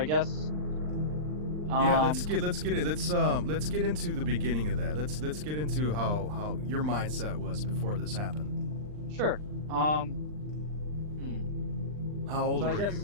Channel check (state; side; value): late; left; 39 ms